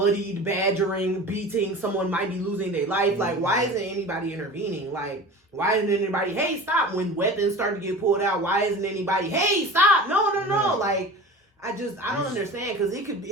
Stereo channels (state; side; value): normal; both; correlation 0.36